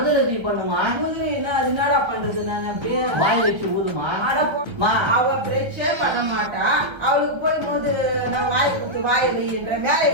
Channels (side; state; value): left; late; 1.3 ms